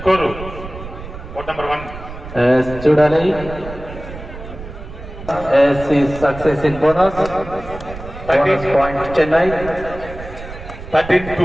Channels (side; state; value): right; noise; rumble, 12 dB below the sound